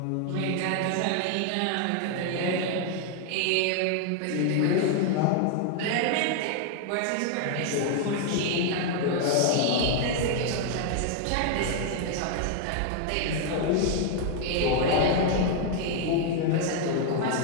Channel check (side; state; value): both; different; correlation 0.00